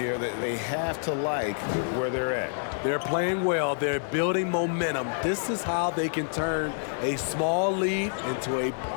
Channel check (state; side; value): silent; right; digital silence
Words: that they have to like where they're at. They're playing well. They're building momentum. This is how they can turn a small lead into a